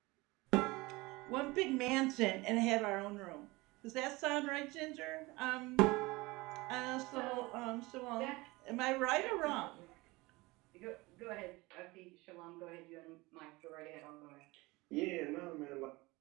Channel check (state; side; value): quieter; left; 22.2 dB